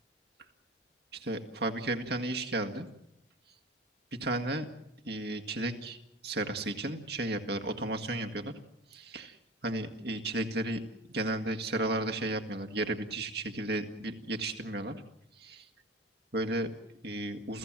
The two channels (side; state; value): both; normal; correlation 0.35